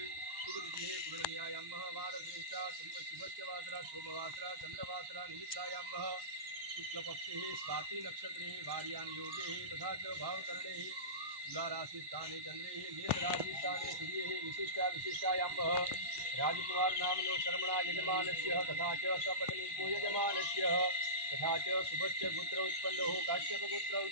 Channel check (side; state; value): left; late; 1.1 ms